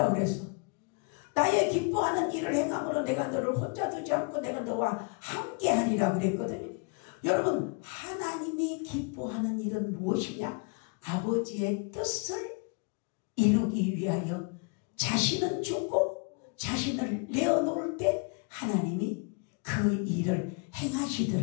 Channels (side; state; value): right; quieter; 33.6 dB